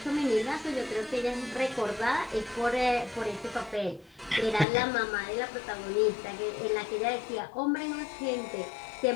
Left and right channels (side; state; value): right; drops out; at 4.7 s